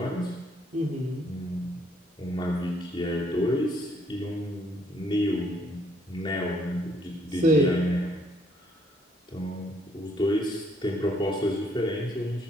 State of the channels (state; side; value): normal; both; correlation 0.67